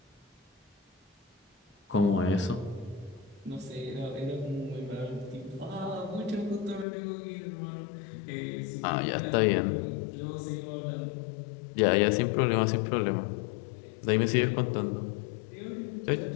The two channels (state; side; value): drops out; right; at 6.9 s